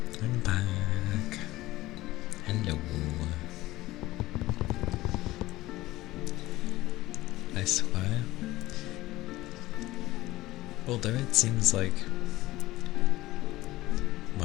I'm back. Hello. I swear, although it seems like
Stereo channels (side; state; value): right; quieter; 17.5 dB